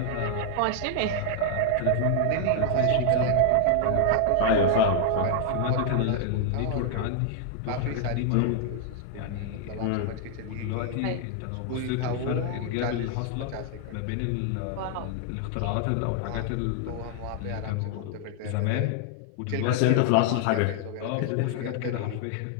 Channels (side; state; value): both; different; correlation 0.00